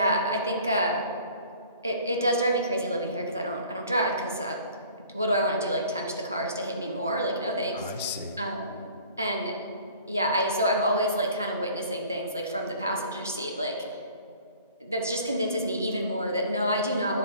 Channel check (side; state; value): both; inverted; correlation -0.50